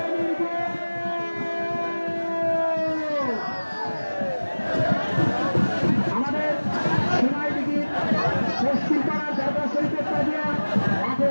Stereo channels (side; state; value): both; inverted; correlation -1.00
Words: পশ্চিম পাড়ার দরগা শরীফের তাজিয়া মাঠে